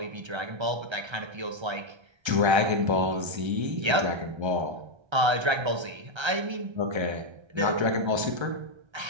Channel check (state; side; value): late; left; 1.3 ms